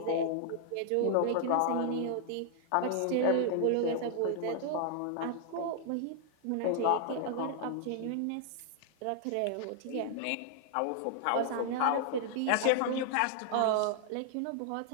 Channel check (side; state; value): both; different; correlation -0.01